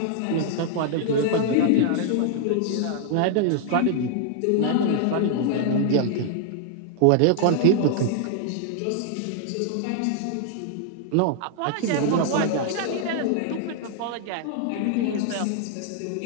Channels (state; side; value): different; both; correlation 0.00